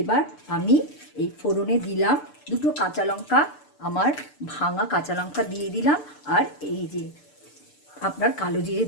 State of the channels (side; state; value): right; late; 6.8 ms